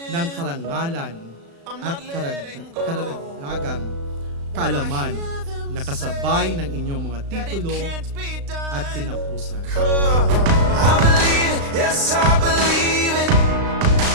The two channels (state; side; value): late; left; 36 ms